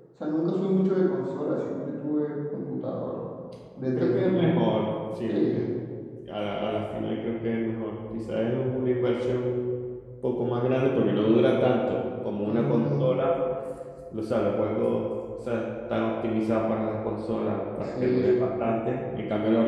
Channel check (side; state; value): both; identical; correlation 1.00